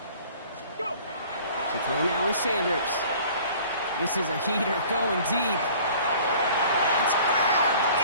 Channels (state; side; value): inverted; both; correlation -0.49